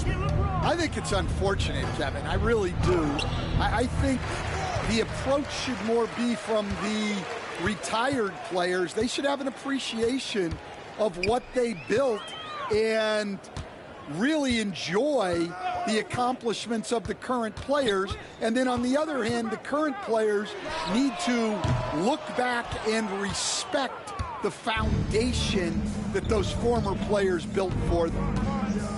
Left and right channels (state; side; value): identical; both; correlation 1.00